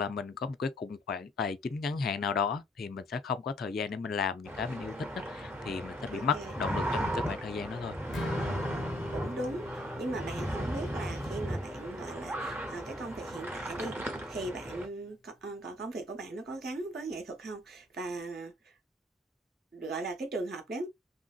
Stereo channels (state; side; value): normal; both; correlation 0.65